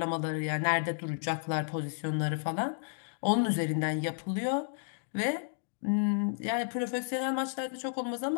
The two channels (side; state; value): right; silent; digital silence